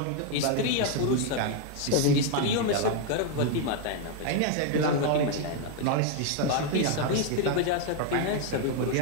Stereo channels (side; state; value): both; different; correlation 0.01